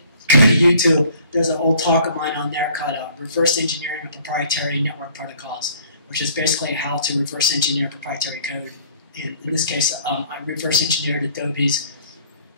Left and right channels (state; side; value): inverted; both; correlation -0.55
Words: go to YouTube. There's an old talk of mine on there called Reverse Engineering of Proprietary Network Protocols, which is basically how to reverse engineer proprietary code. In this case, I reverse engineered Adobe's